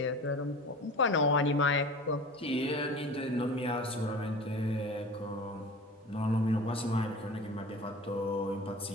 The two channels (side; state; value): both; normal; correlation 0.37